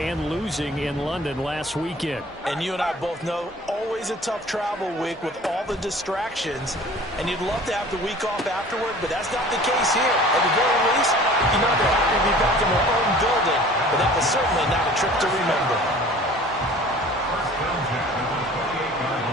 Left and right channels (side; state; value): both; normal; correlation 0.46